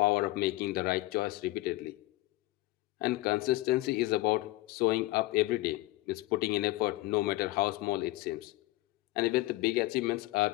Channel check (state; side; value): quieter; right; 19.3 dB